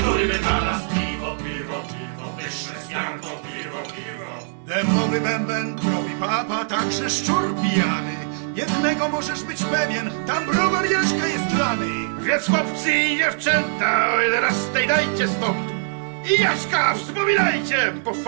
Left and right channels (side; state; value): left; silent; digital silence